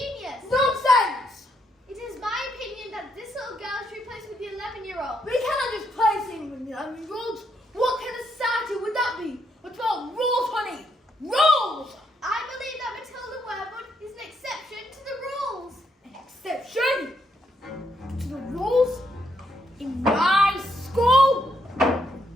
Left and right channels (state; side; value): normal; both; correlation 0.76